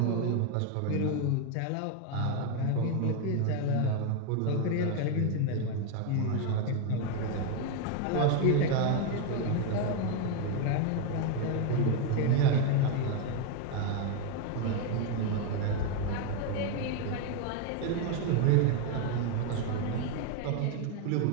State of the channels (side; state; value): both; different; correlation 0.01